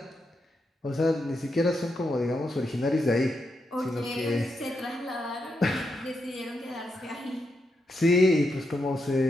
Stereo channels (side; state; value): both; normal; correlation 0.83